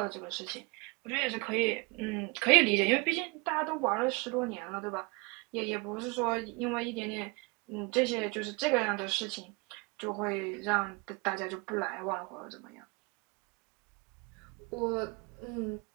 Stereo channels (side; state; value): left; quieter; 28.9 dB